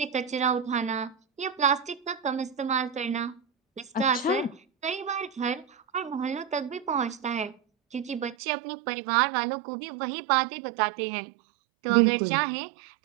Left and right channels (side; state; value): left; drops out; at 8.3 s